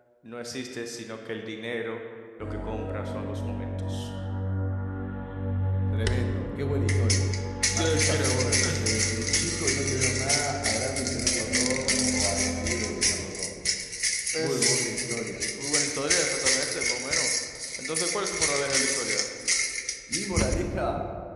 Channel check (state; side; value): identical; both; correlation 1.00